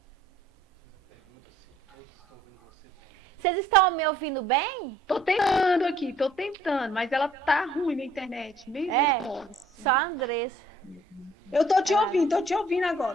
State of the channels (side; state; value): both; normal; correlation 0.59